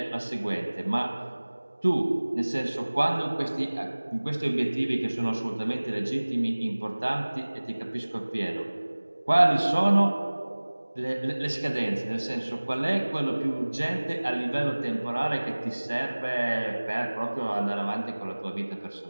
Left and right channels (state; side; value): inverted; both; correlation -1.00